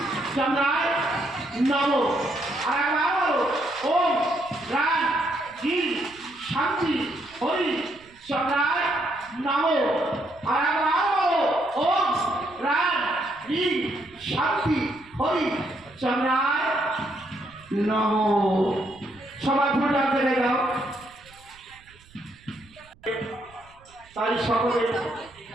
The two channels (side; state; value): right; noise; rumble, 27 dB below the sound